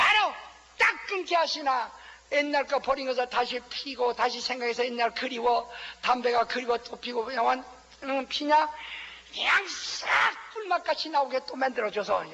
딱 끊게 하시나 옛날 거 버린 것을 다시 피고 다시 생각해서 옛날 그리워 담배가 그리워 또 피고 그냥 피냐 그냥 싹 꿀맛같이 나오게 또 만들어줘서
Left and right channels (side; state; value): both; identical; correlation 1.00